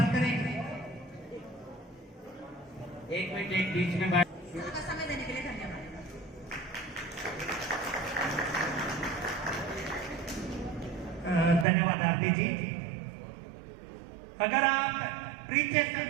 करें। 1 मिनट, एक बीच में बात। समय देने के लिए धन्यवाद। धन्यवाद आरती जी। अगर आप परिचय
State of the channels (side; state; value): left; drops out; at 11.7 s